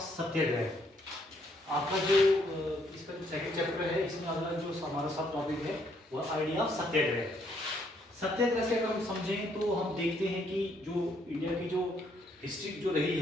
सत्याग्रह आपका जो इसका जो सेकंड चैप्टर है, इसमें अगला जो हमारा सब टॉपिक है वो आइडिया ऑफ सत्याग्रह। सत्याग्रह से अगर हम समझें तो हम देखते हैं कि जो इंडिया की जो हिस्ट्री जो रही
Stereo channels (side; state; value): both; normal; correlation 0.70